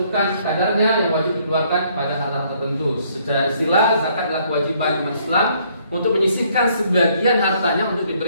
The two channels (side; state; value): both; inverted; correlation -0.66